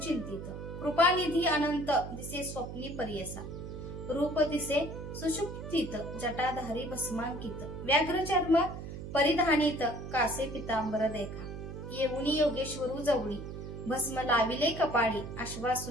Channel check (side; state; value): right; noise; hum, 9 dB below the sound